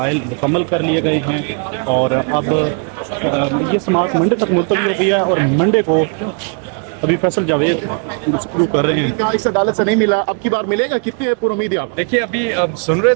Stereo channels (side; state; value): left; quieter; 39.7 dB